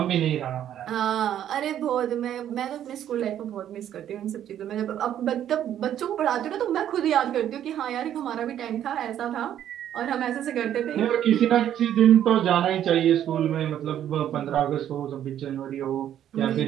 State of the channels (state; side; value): quieter; left; 10.7 dB